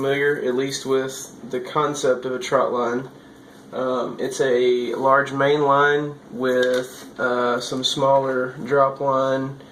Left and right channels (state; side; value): identical; both; correlation 1.00